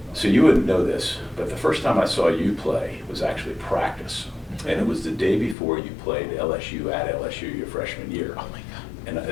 So you wouldn't know this, but the first time I saw you play was actually practice. And it was the day before you played LSU at LSU your freshman year. Oh my God. And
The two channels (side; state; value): right; drops out; at 5.6 s